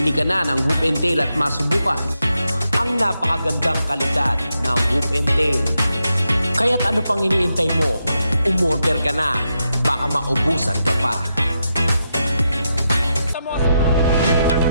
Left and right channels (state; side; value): inverted; both; correlation -0.84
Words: ka na ng Whoop and Tail at masubukan ang napakagandang kalidad ng Whoop and Tail. Kaya't ano pang iniintay mo? Umorder ka na. Baka maubusan ka pa.